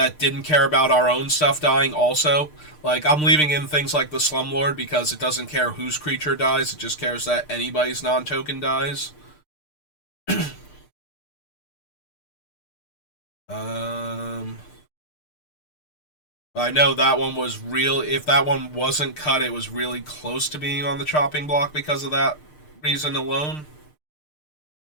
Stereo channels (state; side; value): late; right; 6.6 ms